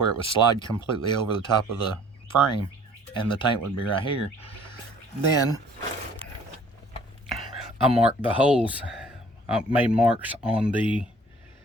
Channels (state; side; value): normal; both; correlation 0.54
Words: it would slide completely over the top of the frame and the tank would be right here, then I marked the holes. I made marks on the